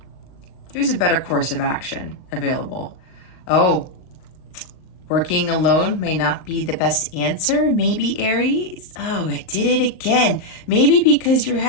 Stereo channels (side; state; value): right; late; 38 ms